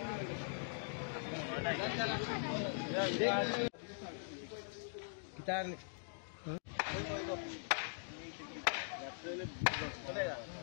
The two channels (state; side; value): silent; right; digital silence